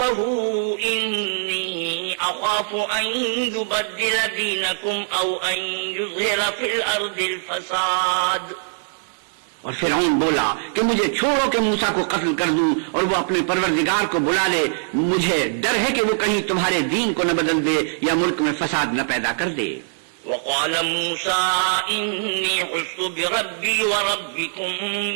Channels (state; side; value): silent; left; 64 dB below the other